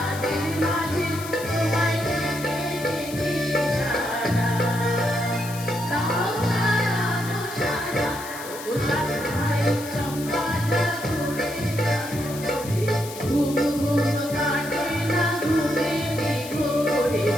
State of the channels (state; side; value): noise; left; hiss, 13 dB below the sound